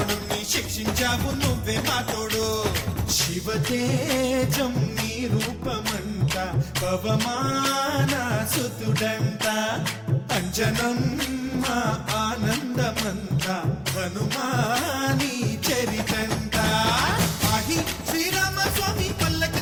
శిక్షించావు నువ్వే మా తోడు శివతేజం నీ రూపమంట పవమాన సుతుడంట అంజనం మా ఆనందమంత హనుమాని చరితంట ఆహి శ్రీరామ స్వామి పల్లకి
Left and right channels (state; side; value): identical; both; correlation 1.00